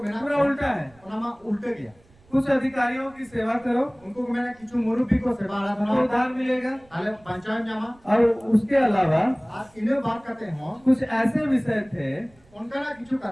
बिना पूरा उल्टा है। ओनामा उल्टे गया कुछ अधिकारियों की सेवा करो उनको मैंने किचु मुरुबी को सेवा तो आराधना उद्धार मिलेगा आले पंचायत जामा और उसके अलावा आज इन्हें बात करते हो कुछ ऐसे विषय थे उनका ना किचु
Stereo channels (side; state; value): right; noise; rumble, 29 dB below the sound